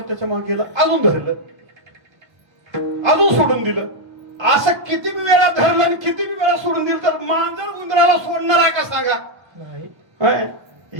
मागे गेलं, अजून धरलं, अजून सोडून दिलं. असं किती वेळा धरलं आणि किती वेळा सोडून दिलं तर मांजर उंदराला सोडणार आहे का सांगा?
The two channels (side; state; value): left; late; 1.3 ms